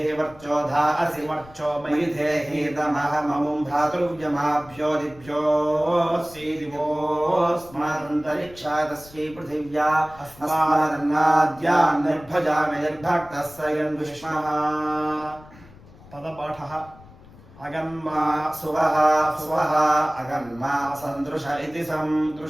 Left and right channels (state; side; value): noise; left; rumble, 22 dB below the sound